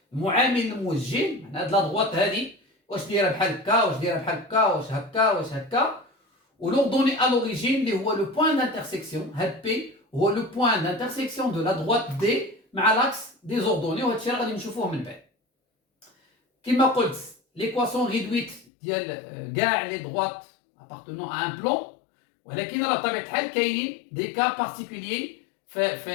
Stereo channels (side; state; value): right; drops out; at 18.7 s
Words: المعامل الموجه. معناتها هاد لا دروات هادي واش دايره بحال هكا، واش دايره بحال هكا، واش هكا، واش هكا. ولوردوني ا لوريجين اللي هو لو بوين دانترسيكسيون. هاد بي هو لو بوين دانترسيكسيون دو لا دروات دي مع لاكس دي زوردوني، وهاد الشيء غادي نشوفوه من بعد. كما قلت ليكواسيون ريدويت ديال كاع لي دروات appartenant à un plan، ولكن راه بطبيعه الحال كاينين دي كا بارتيكوليي